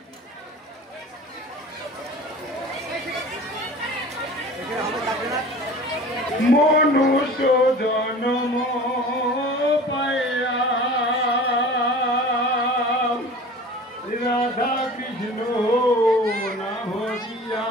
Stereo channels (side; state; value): both; normal; correlation 0.41